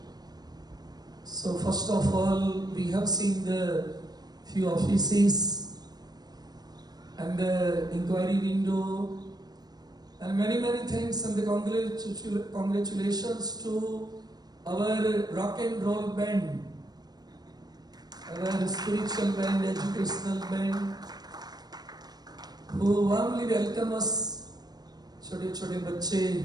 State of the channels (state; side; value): late; left; 0.19 ms